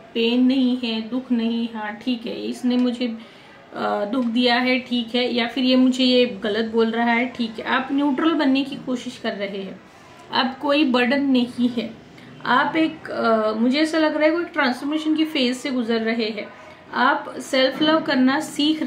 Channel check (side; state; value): both; identical; correlation 1.00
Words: पेन नहीं है, दुख नहीं, हाँ ठीक है इसने मुझे दुख दिया है, ठीक है, या फिर ये मुझे ये गलत बोल रहा है, ठीक है। आप न्यूट्रल बनने की कोशिश कर रहे हैं, अब कोई बर्डन नहीं है। आप एक मुझे ऐसा लग रहा है कोई ट्रांसफॉर्मेशन की फेज से गुजर रहे हैं। आप सेल्फ लव करना सीख